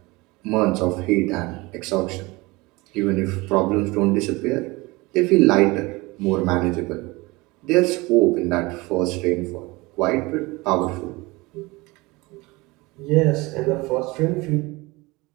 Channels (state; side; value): quieter; left; 23.0 dB